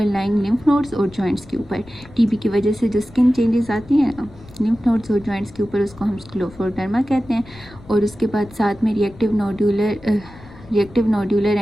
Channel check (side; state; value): left; noise; rumble, 21 dB below the sound